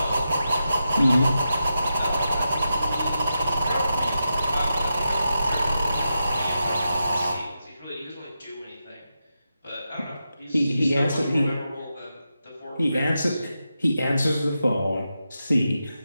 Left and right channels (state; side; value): inverted; both; correlation -0.88